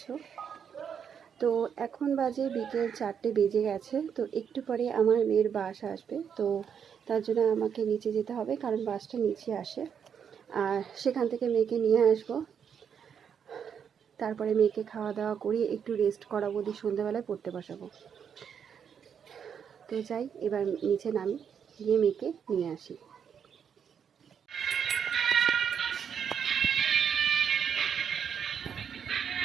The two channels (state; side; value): quieter; left; 7.6 dB